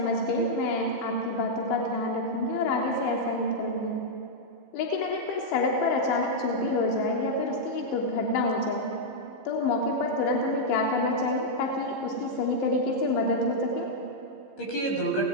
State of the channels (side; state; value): right; late; 15 ms